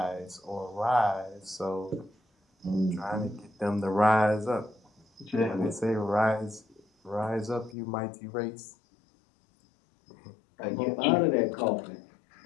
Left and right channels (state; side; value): drops out; right; at 7.8 s